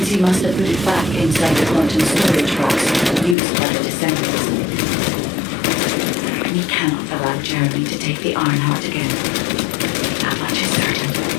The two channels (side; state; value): right; drops out; at 3.4 s